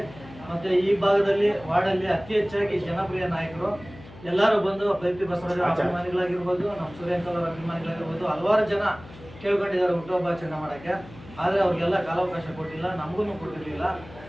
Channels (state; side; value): noise; left; hum, 19 dB below the sound